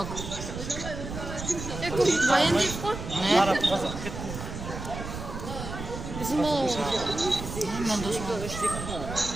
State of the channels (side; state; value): right; noise; rumble, 8 dB below the sound